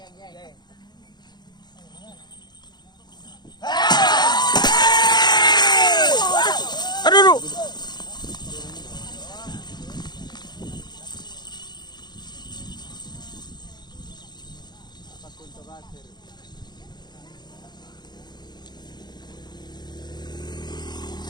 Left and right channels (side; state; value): right; late; 0.21 ms